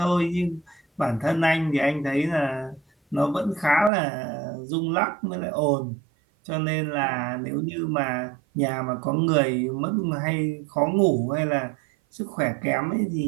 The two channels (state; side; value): drops out; left; at 3.9 s